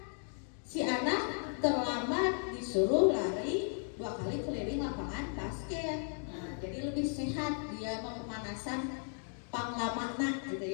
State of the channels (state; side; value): silent; right; 54 dB below the other